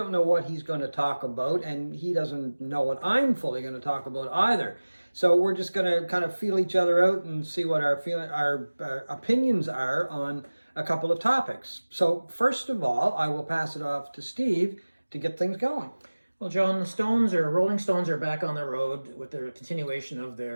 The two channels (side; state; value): both; inverted; correlation -1.00